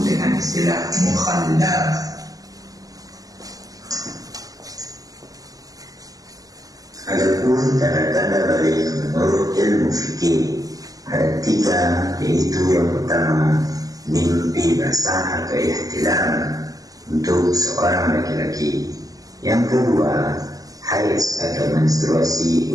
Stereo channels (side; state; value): left; late; 0.17 ms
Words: dengan istilah mukhallaf. Adapun tanda-tanda balik menurut ilmu fikih ada 3, yaitu yang pertama mimpi basah atau ihtilam untuk seorang laki-laki, yang kedua haid atau menstruasi